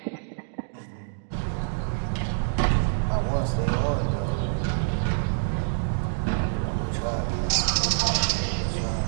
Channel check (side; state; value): left; silent; digital silence